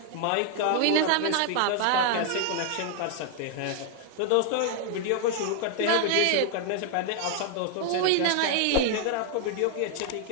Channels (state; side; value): different; both; correlation 0.00